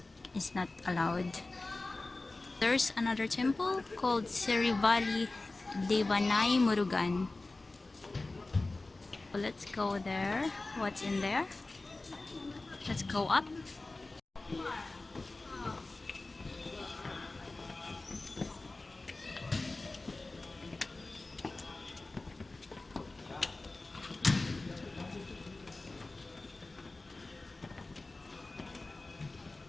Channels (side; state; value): right; quieter; 3.2 dB